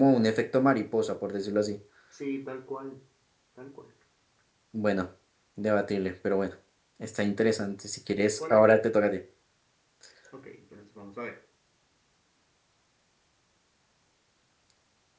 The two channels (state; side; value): identical; both; correlation 1.00